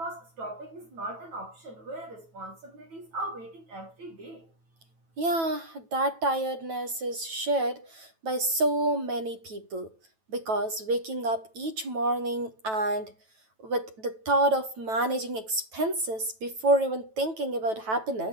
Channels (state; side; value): late; left; 9.1 ms